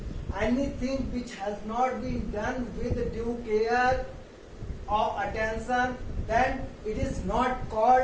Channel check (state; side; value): identical; both; correlation 1.00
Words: Anything which has not been done with due care or attention, then it is not